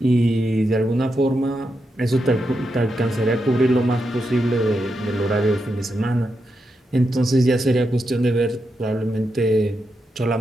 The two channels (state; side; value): normal; both; correlation 0.85